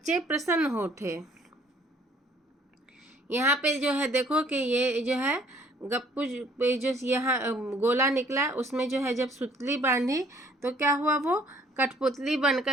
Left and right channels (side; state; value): both; normal; correlation 0.59